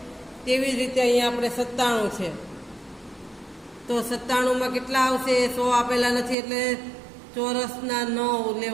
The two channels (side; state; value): left; drops out; at 6.4 s